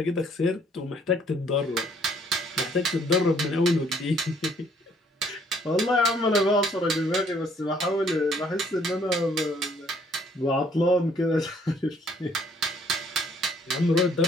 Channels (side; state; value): both; normal; correlation 0.63